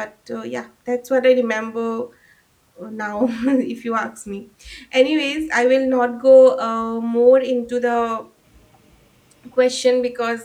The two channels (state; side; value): identical; both; correlation 1.00